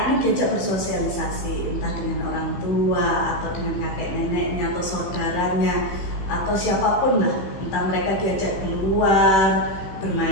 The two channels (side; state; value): right; late; 16 ms